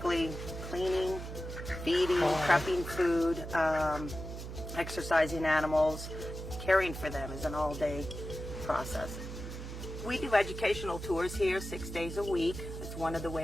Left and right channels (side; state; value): right; noise; hum, 8 dB below the sound